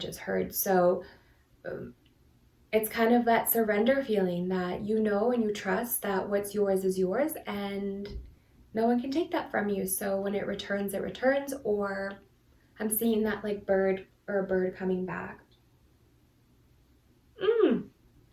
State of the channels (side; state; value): both; identical; correlation 1.00